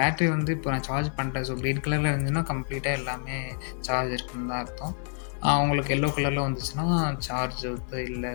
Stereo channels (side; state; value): right; silent; 56 dB below the other